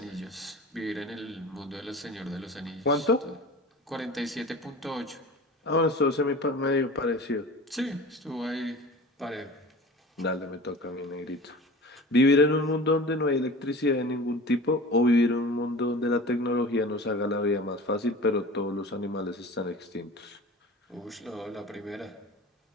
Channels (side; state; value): both; normal; correlation 0.38